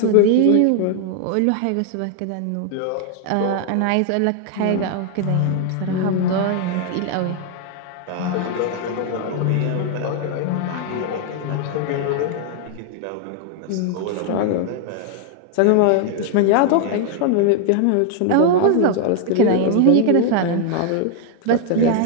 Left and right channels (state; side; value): different; both; correlation 0.00